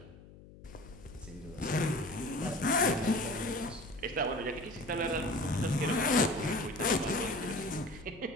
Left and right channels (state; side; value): noise; left; hum, 20 dB below the sound